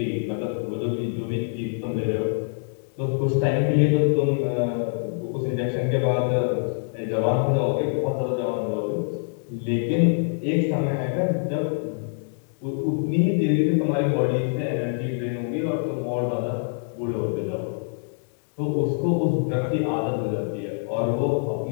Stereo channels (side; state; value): right; silent; digital silence